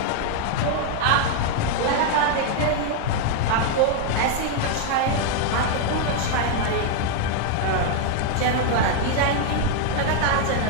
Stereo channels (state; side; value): different; both; correlation 0.00